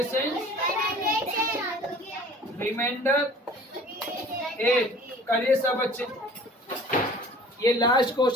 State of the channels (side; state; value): both; normal; correlation 0.47